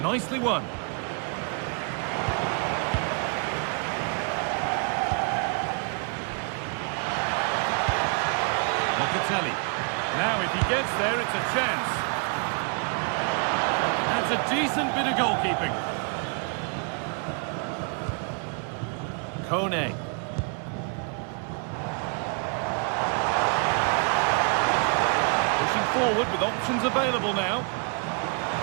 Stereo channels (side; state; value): left; quieter; 37.6 dB